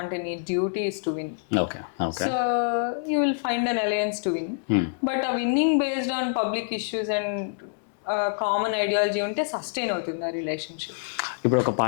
అంటే నీ duty is to win. So you will find an alliance to win, but ఆ winning based on public issues and common ideology ఉంటే సస్టైన్ అవుతుంది ఆ రిలేషన్షిప్. ఇప్పుడు ఒక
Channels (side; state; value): right; silent; digital silence